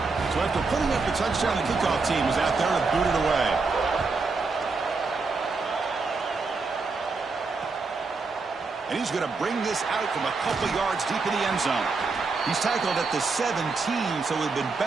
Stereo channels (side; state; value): left; quieter; 4.2 dB